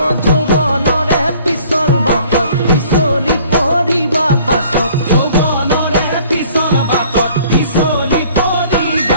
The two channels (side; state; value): both; inverted; correlation -0.55